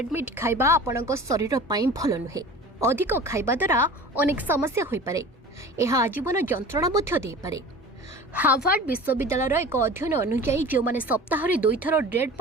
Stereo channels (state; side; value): normal; both; correlation 0.39